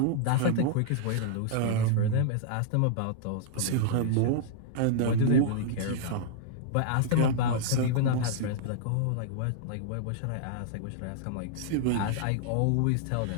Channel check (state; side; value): different; both; correlation -0.01